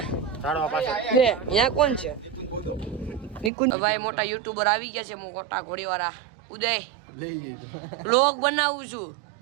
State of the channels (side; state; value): left; drops out; at 3.5 s